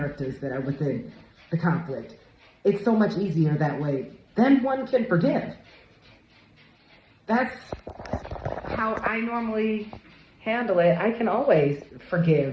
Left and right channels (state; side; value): identical; both; correlation 1.00